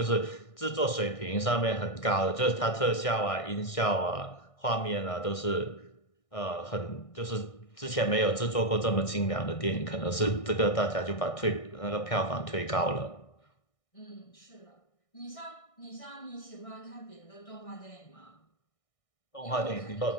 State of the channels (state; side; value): late; right; 1.6 ms